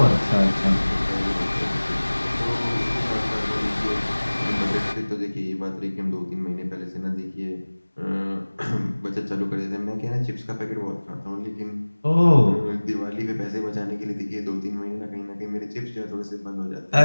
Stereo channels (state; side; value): inverted; both; correlation -1.00